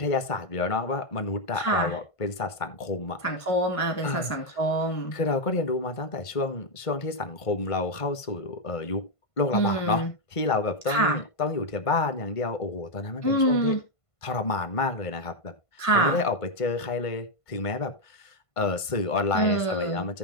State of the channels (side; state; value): right; late; 1.5 ms